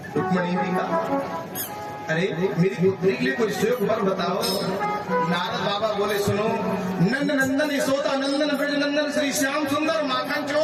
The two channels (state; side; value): identical; both; correlation 1.00